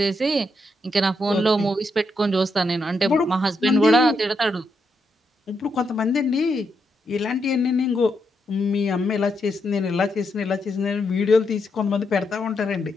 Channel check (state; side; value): normal; both; correlation 0.81